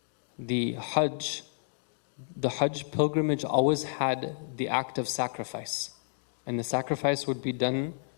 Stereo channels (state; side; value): silent; right; digital silence